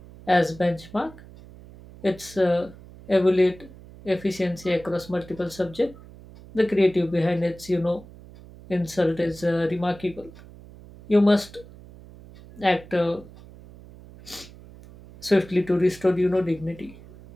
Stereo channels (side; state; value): right; noise; hum, 19 dB below the sound